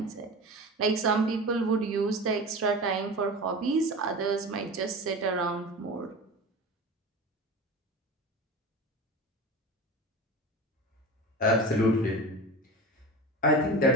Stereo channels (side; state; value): both; normal; correlation 0.31